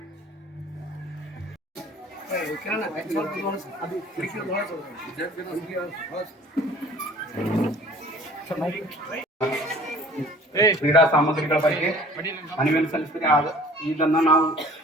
ಕ್ರೀಡಾ ಸಾಮಗ್ರಿಗಳ ಬಗ್ಗೆ ಮನವಿಯನ್ನು ಸಲ್ಲಿಸಿದರೆ ಇದನ್ನು ನಾವು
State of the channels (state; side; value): normal; both; correlation 0.50